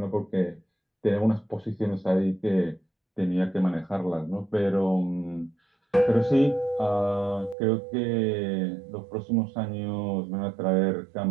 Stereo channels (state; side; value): drops out; left; at 7.6 s